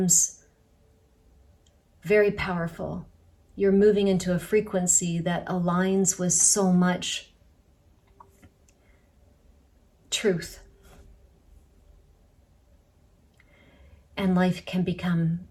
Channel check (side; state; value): both; identical; correlation 1.00